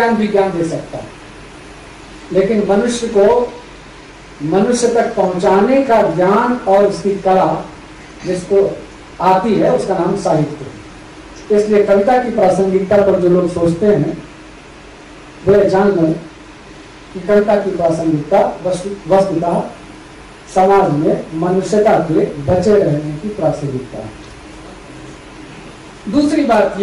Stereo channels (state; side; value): identical; both; correlation 1.00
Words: भी ज्ञान दे सकता है, लेकिन मनुष्य को मनुष्य तक पहुंचाने का ज्ञान और उसकी कला जिसको आती है, उसका नाम साहित्य है। इसलिए कविता की प्रासंगिकता पर जो लोग सोचते हैं, वे जान लें कि कविता की प्रासंगिकता वस्तुतः समाज में मनुष्यता के बचे रहने की प्रासंगिकता है। दूसरी बात